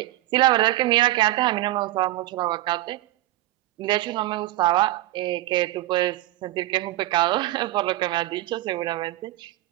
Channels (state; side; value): quieter; left; 16.6 dB